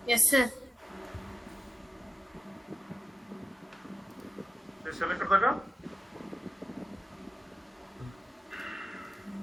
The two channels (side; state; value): both; normal; correlation 0.94